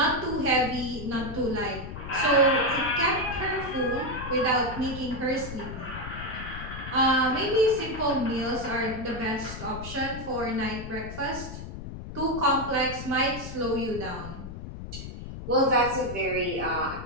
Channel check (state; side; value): noise; left; rumble, 10 dB below the sound